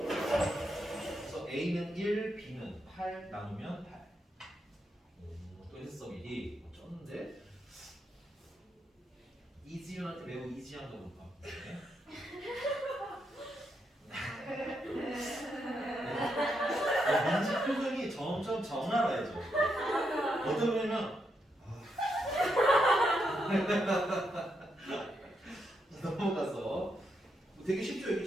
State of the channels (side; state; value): both; normal; correlation 0.81